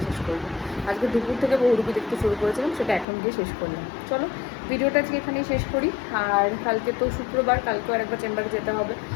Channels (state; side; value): drops out; right; at 3.1 s